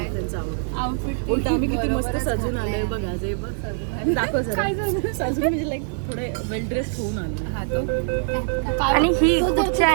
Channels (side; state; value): left; silent; digital silence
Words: त्यांचं आउटफिट उलट आम्ही किती मस्त सजून आलोय बघा. जे बघ दाखव सजून म्हणजे लाईक थोडे वेल ड्रेस होऊन आलो. आणि ही कुठच्या